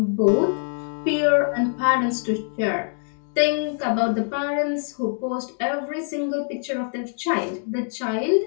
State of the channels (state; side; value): silent; right; digital silence